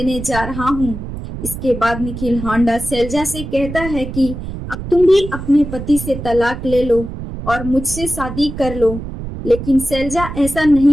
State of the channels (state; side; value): noise; right; rumble, 8 dB below the sound